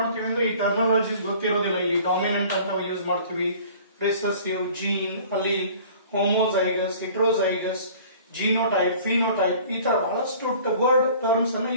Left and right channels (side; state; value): both; inverted; correlation -0.48